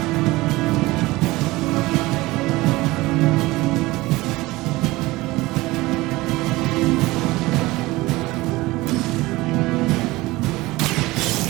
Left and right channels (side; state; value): left; quieter; 20.1 dB